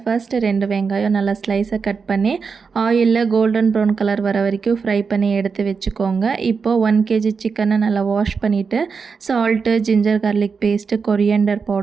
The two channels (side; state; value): left; quieter; 5.4 dB